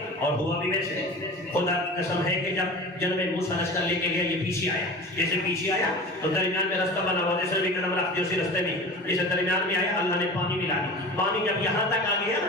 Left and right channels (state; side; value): normal; both; correlation 0.35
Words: اور ہوا بھی ویسے. خدا کی قسم ہے کہ جب جناب موسیٰ رستہ لے کے گیا یہ پیچھے آیا. جیسے پیچھے آیا تو درمیان میں رستہ بنا ہوا، جیسے بھی قدم رکھتے اسی رستے میں جیسے درمیان میں آیا اللہ نے پانی ملا دی. پانی جب یہاں تک آ گیا